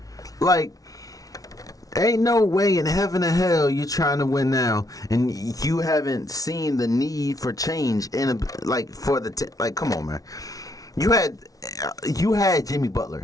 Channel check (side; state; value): right; late; 0.18 ms